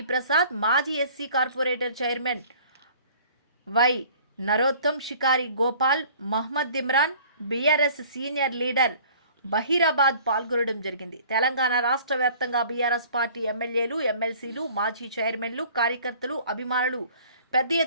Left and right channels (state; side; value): inverted; both; correlation -0.51